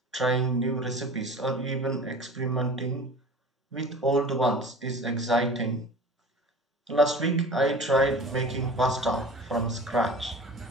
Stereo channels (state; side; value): normal; both; correlation 0.39